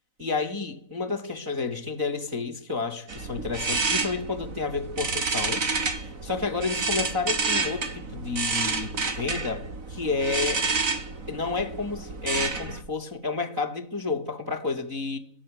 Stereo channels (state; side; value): late; left; 4.0 ms